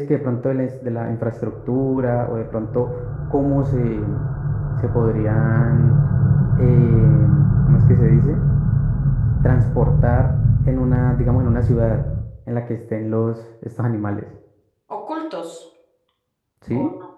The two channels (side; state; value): both; identical; correlation 1.00